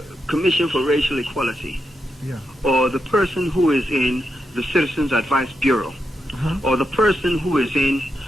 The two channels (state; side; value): normal; both; correlation 0.85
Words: Commission for Racial Equality, or the person who is in the Citizens Advice Bureau, or the person who is in